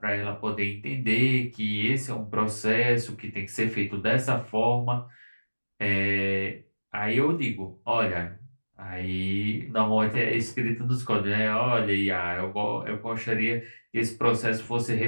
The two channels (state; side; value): inverted; both; correlation -1.00